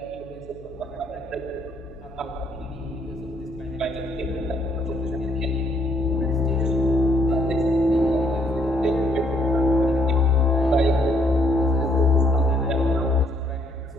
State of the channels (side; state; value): left; noise; hum, 21 dB below the sound